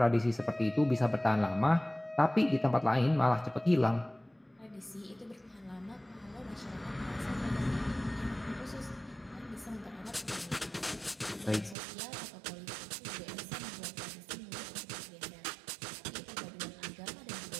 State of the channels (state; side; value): drops out; left; at 11.8 s